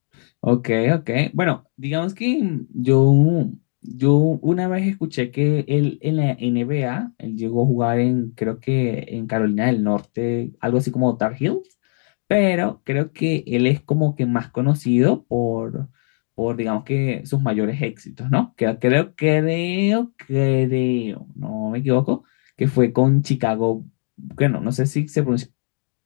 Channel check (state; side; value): silent; right; digital silence